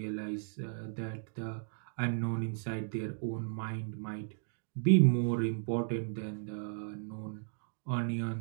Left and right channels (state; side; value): silent; left; digital silence